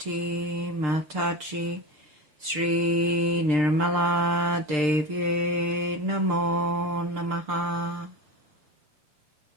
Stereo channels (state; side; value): late; left; 6.6 ms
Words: Mataji Shri Nirmala Devi Namo Namaha.